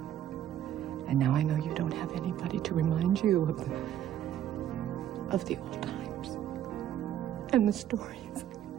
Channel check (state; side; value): quieter; left; 10.9 dB